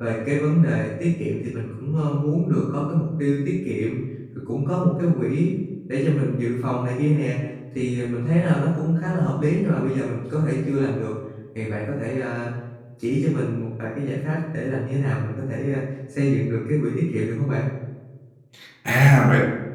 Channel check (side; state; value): both; identical; correlation 1.00